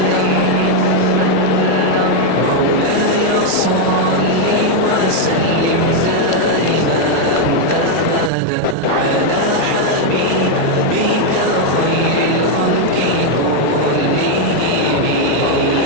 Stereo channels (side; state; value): both; different; correlation 0.01